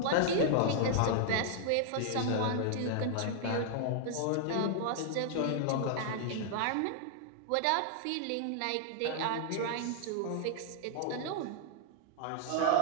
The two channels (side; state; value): both; different; correlation -0.01